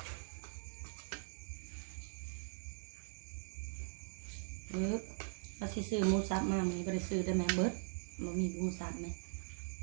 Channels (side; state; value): left; silent; digital silence